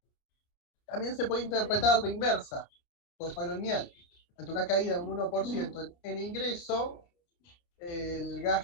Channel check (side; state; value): right; late; 30 ms